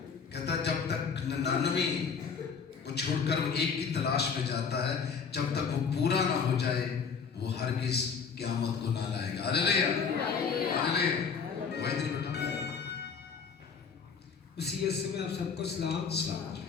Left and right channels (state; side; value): quieter; right; 6.0 dB